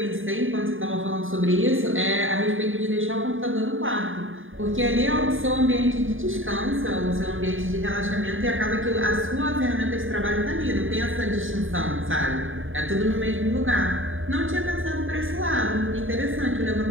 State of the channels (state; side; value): late; left; 0.58 ms